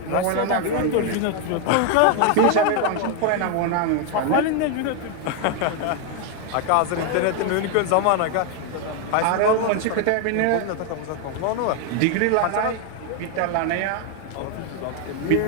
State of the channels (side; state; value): both; different; correlation 0.01